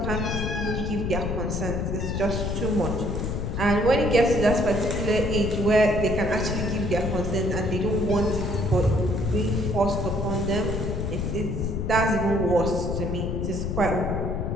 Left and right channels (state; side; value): noise; left; rumble, 2 dB below the sound